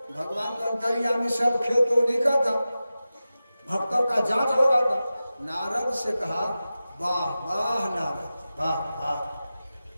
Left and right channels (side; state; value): both; inverted; correlation -0.94